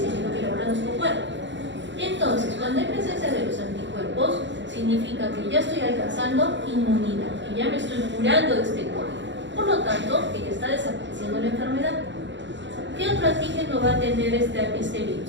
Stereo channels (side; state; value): left; late; 0.53 ms